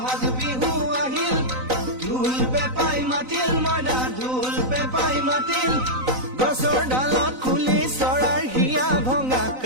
বিহু আহিল ঢোল পেপাই মাতিল মইনা ঢোল পেপাই মাতিল গছৰ ডালত খুলি চৰাৰ হিয়া ভঙা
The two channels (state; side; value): late; left; 3.9 ms